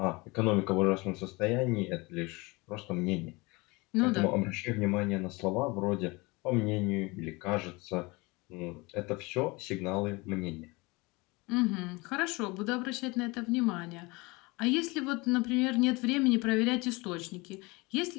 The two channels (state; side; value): quieter; right; 24.9 dB